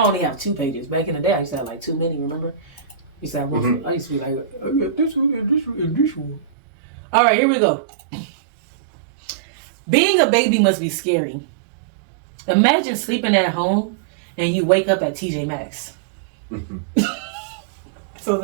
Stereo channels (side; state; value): left; drops out; at 6.5 s